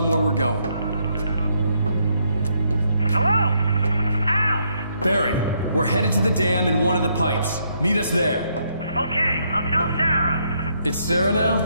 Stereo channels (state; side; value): inverted; both; correlation -0.74